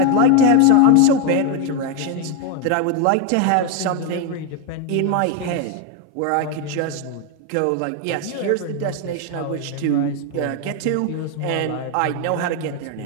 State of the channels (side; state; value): both; different; correlation 0.01